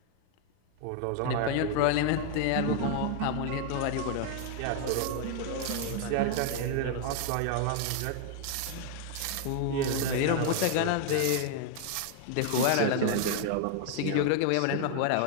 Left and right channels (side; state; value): both; different; correlation 0.00